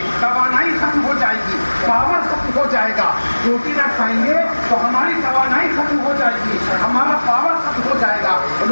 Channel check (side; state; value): both; inverted; correlation -1.00